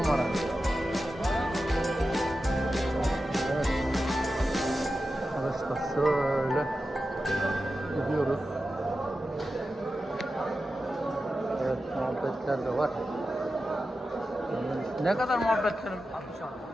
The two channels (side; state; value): both; normal; correlation 0.92